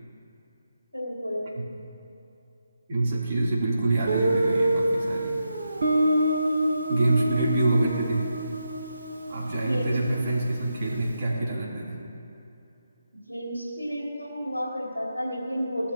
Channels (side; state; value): both; inverted; correlation -0.86